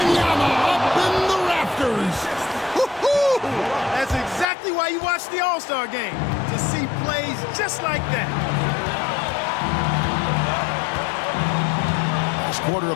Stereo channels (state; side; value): drops out; right; at 4.5 s